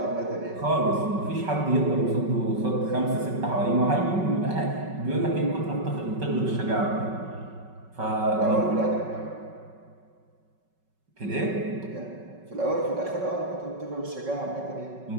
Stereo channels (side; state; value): left; late; 5.3 ms